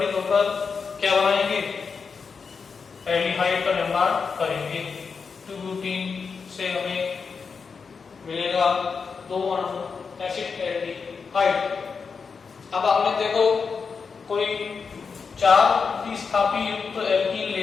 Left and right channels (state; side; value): quieter; right; 5.4 dB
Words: होकर क्या बनाएंगे, एल्डिहाइड का निर्माण करेंगे। 2-ब्यूटीन से हमें मिलेगा 2 अणु एसिटाल्डिहाइड। अब आपने देखो कोई 4 प्रतिस्थापी युक्त एल्कीन